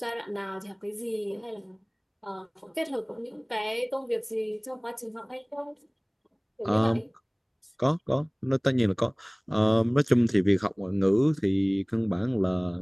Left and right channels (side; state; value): both; identical; correlation 1.00